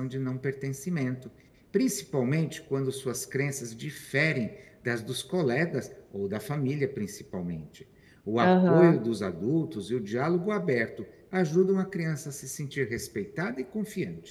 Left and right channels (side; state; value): both; identical; correlation 1.00